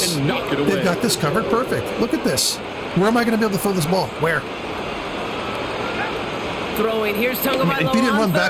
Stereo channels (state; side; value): identical; both; correlation 1.00